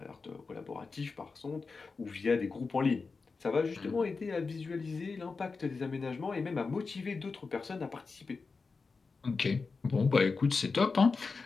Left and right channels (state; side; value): quieter; right; 4.4 dB